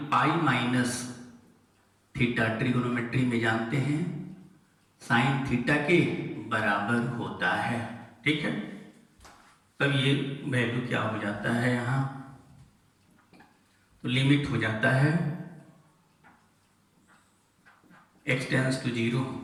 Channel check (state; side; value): identical; both; correlation 1.00